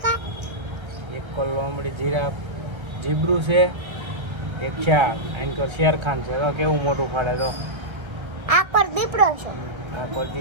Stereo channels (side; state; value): left; late; 1.3 ms